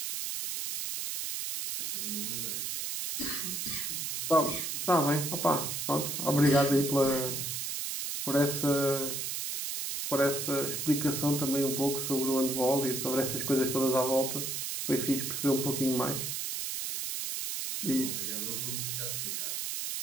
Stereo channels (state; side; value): noise; right; hiss, 3 dB below the sound